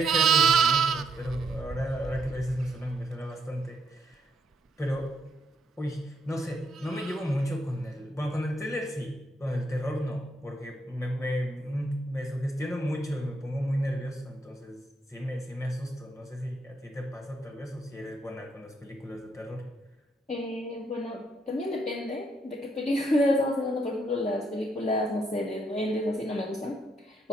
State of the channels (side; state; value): both; normal; correlation 0.75